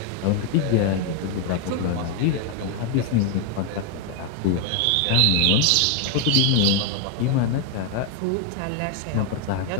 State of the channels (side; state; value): both; different; correlation 0.01